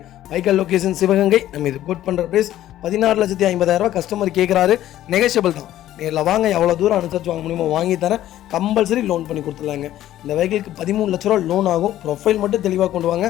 வைக்கல் லொக்கேஷன் சிவகங்கை. நம்ம இது கோட் பண்ணுற ப்ரைஸ் 14,50,000 கஸ்டமர் கேட்குறாரு. நெகோஷியபிள் தான். நேரில் வாங்க, எவ்வளோ தூரம் அனுசரித்து வாங்க முடியுமோ வாங்கி தரேன். கம்பல்சரி லோன் பண்ணி கொடுத்துடலாங்க. இந்த வெஹிக்கிளுக்கு 13 லட்ச ரூபா லோன் ஆகும். ப்ரொஃபைல் மட்டும் தெளிவாக கொண்டு வாங்க.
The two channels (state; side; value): quieter; right; 13.2 dB